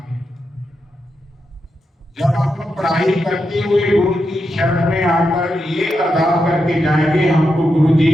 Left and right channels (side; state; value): both; normal; correlation 0.86